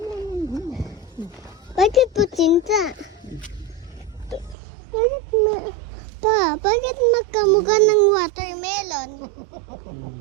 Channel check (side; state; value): left; drops out; at 4.5 s